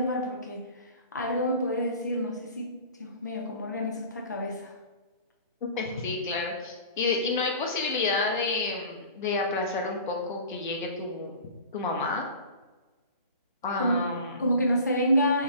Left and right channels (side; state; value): both; inverted; correlation -0.41